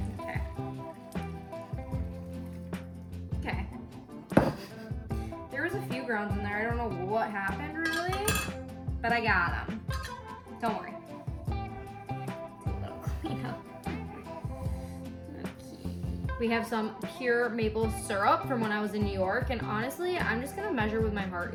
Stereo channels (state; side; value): identical; both; correlation 1.00